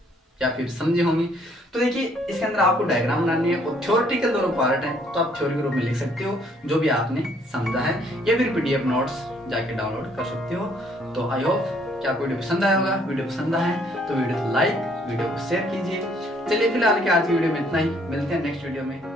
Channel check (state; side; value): normal; both; correlation 0.64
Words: या फिर समझे होंगे। तो देखिए इसके अंदर आपको डायग्राम बनानी है और थ्योरेटिकल दोनों पार्ट है, तो आप थ्योरी के रूप में लिख सकते हो जो भी आपने समझा है, या फिर पीडीएफ नोट्स जाके डाउनलोड कर सकते हो। तो आई होप कि आपको वीडियो पसंद आया होगा। वीडियो पसंद आया है तो वीडियो को लाइक, वीडियो को शेयर कीजिए। चलिए फिलहाल के आज की वीडियो में इतना ही, मिलते हैं नेक्स्ट वीडियो में,